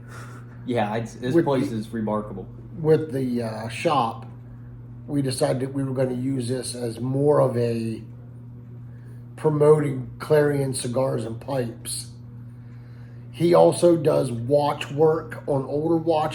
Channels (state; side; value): identical; both; correlation 1.00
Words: yeah, this With place the- is remarkable. with the shop, we decided that we were going to use this as more of a promoting Clarion cigars and pipes. He also does watch work on older